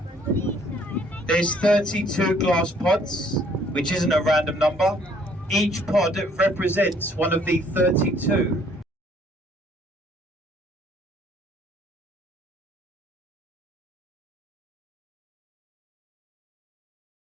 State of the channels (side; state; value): both; normal; correlation 0.62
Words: There's 32 glass pods, which isn't a random number. Each pod represents one of the 32